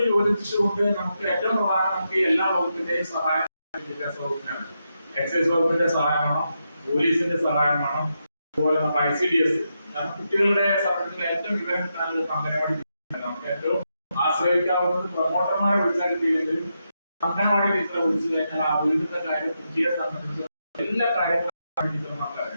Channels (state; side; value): inverted; both; correlation -0.84